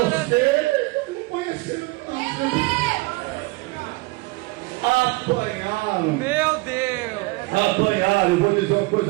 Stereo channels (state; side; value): quieter; left; 23.5 dB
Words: não conheceu. Apanharam. Meu Deus! Apanharam. Eu vou dizer uma